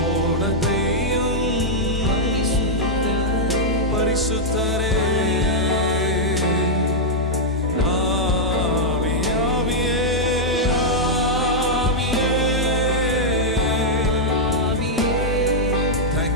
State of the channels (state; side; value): normal; both; correlation -0.05